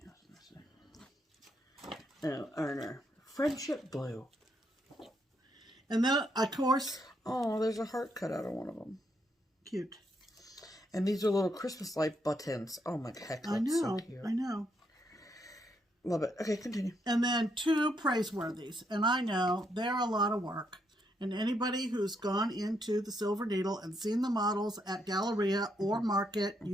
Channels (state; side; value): normal; both; correlation 0.77